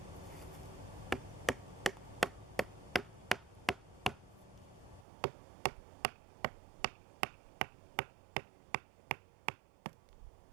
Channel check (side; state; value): left; drops out; at 5.1 s